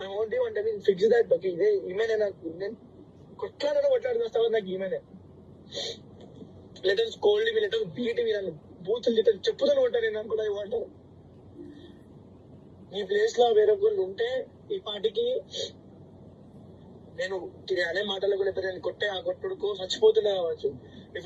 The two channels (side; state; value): both; identical; correlation 1.00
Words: I want you అంటే ఫిక్స్ దట్. బట్ ఈమెనే నాకు నేను కొట్లాడికి వస్తావు నాకు ఈమెనే. Letters cold me, letters beat me, నన్ను బూతులు తిట్టారు, చెప్పుతాను ఉంటాను నేను అనుకున్నా. ఐ వాంట్ ఈ ప్లేస్ లో వేరొకళ్ళు ఉంటే ఈ పాటికి నేను అనే మాటలు కూడా నేను కొట్టే ఆ కొట్టుడుకు చచ్చిపోతున్నా కావచ్చు. If